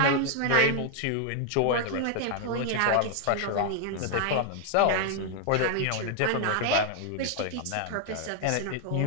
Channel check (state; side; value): different; both; correlation 0.00